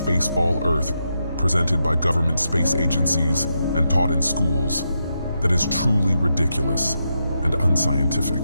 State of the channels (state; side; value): inverted; both; correlation -0.84